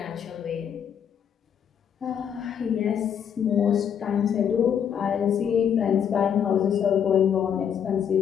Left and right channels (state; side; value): quieter; right; 8.3 dB